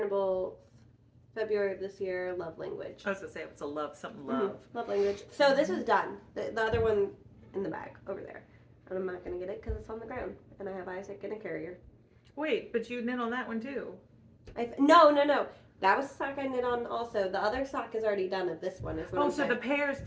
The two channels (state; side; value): identical; both; correlation 1.00